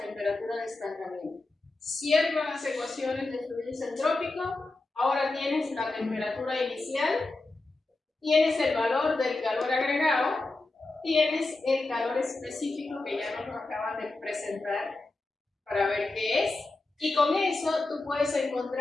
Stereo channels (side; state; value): right; quieter; 3.2 dB